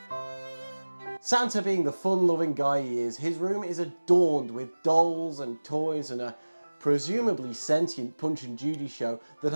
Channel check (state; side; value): inverted; both; correlation -1.00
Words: Santa being the fun-loving guy he is, his room is adorned with dolls and toys and a presumably sentient Punch and Judy show that